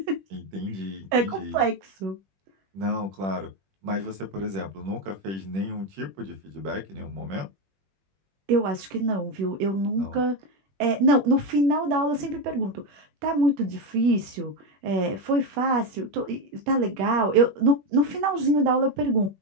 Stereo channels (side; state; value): left; late; 21 ms